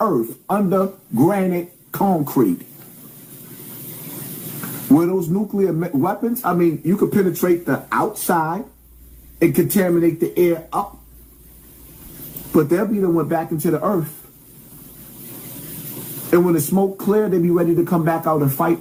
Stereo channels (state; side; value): identical; both; correlation 1.00